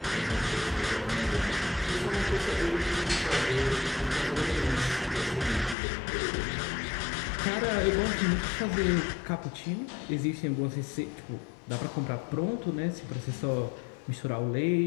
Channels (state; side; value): drops out; right; at 5.8 s